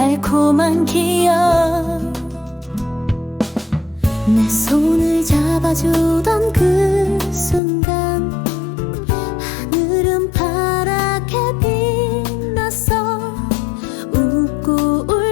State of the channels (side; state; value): right; drops out; at 7.6 s